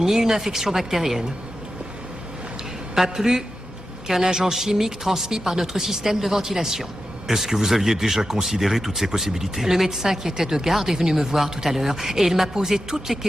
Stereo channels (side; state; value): both; normal; correlation 0.91